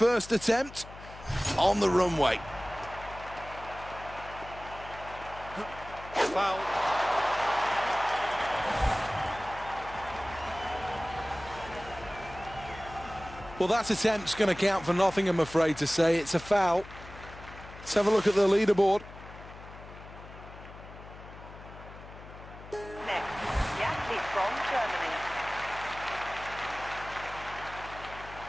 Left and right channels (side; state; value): left; noise; hum, 16 dB below the sound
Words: attempt on the runway. Foul. Well, that attempt's going to count for nothing, I'm afraid to say. It's a foul. Let's have a look at the leaderboard. Next, the athlete from Germany.